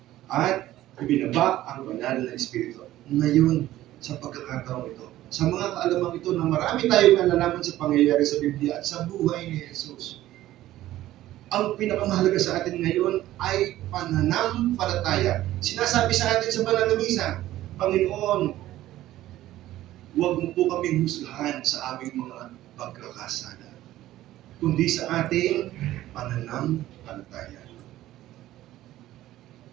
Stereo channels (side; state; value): left; quieter; 14.7 dB